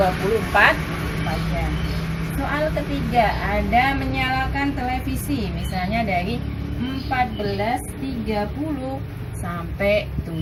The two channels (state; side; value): identical; both; correlation 1.00